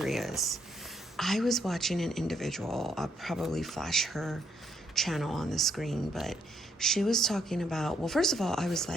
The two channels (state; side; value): normal; both; correlation 0.72